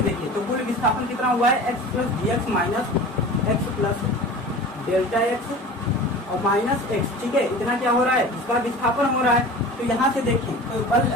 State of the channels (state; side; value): normal; both; correlation 0.37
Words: देखिए तो कुल विस्थापन कितना हुआ है, x plus dx minus x plus delta x और माइनस x, ठीक है, इतना क्या हो रहा है, इसका विस्थापन हो रहा है। तो यहाँ से देखें तो